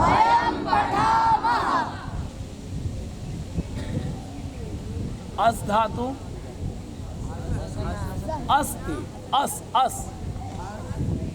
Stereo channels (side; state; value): both; identical; correlation 1.00